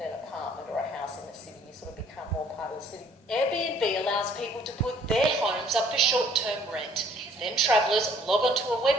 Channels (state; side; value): normal; both; correlation 0.60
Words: an apartment or a house in the city. You sort of become more part of the city. Airbnb allows people to put their homes up for short-term rent. Then travellers log onto a